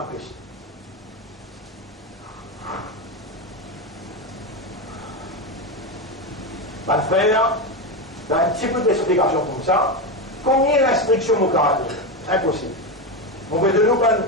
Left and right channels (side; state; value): both; normal; correlation 0.14